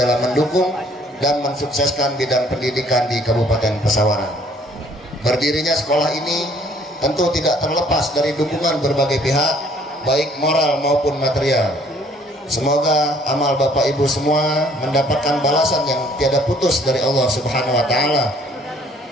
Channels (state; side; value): normal; both; correlation 0.59